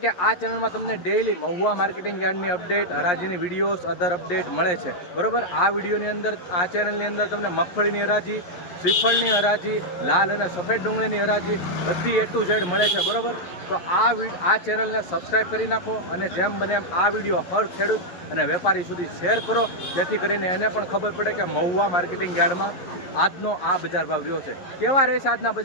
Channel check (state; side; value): late; right; 11 ms